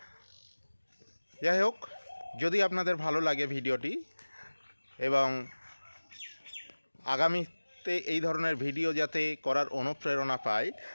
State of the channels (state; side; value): inverted; both; correlation -1.00